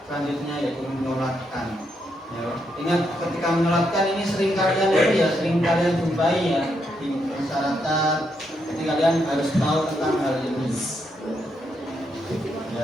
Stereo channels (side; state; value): both; normal; correlation 0.79